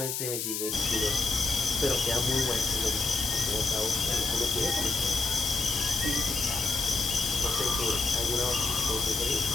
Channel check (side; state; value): left; noise; hiss, 2 dB below the sound